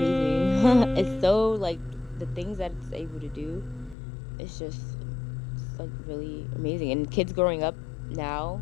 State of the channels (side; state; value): right; drops out; at 4.0 s